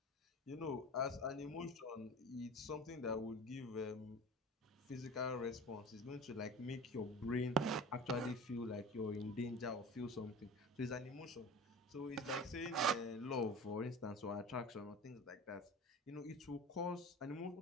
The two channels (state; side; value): normal; both; correlation 0.35